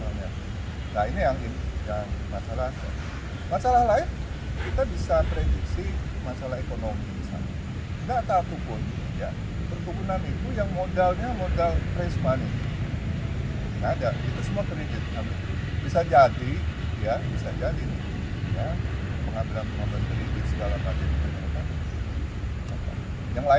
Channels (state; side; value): identical; both; correlation 1.00